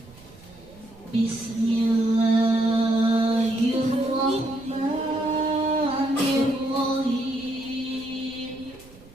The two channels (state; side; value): noise; right; rumble, 23 dB below the sound